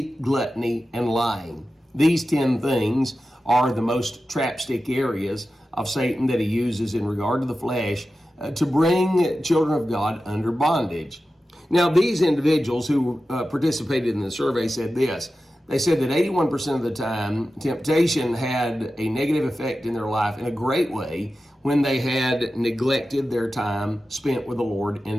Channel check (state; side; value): normal; both; correlation 0.93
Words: gluttony, and lying. These 10 things are the most trapstick areas of Satan that he uses in regard to the flesh to bring children of God under bondage. Now, these individuals who participated in the survey said this. They said that 81% of the time, temptation had a negative effect in their life in a great way when they had neglected their time spent with the Lord